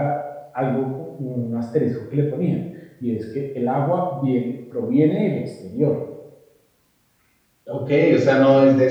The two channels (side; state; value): both; identical; correlation 1.00